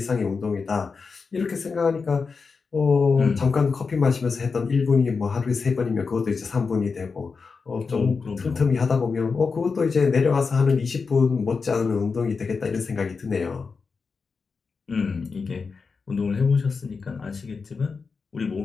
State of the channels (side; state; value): right; quieter; 4.9 dB